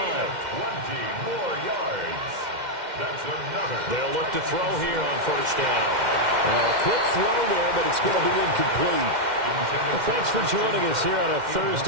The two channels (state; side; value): late; left; 2.1 ms